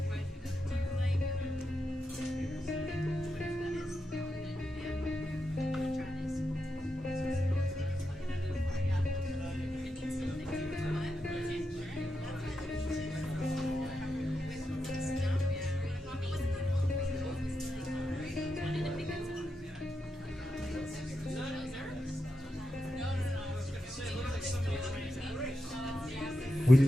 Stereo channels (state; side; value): normal; both; correlation 0.87